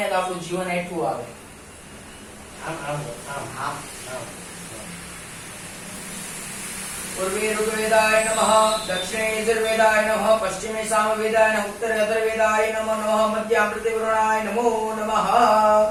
તો આપણું જીવન હેઠું આવે આમ આમ આમ આમ पूर्वे ऋग्वेदाय नमः दक्षिणे यजुर्वेदाय नमः पश्चिमे सामवेदाय नमः उत्तरे अथर्ववेदाय नमो नमः मध्यामृते वरुणाय नमो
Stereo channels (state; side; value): identical; both; correlation 1.00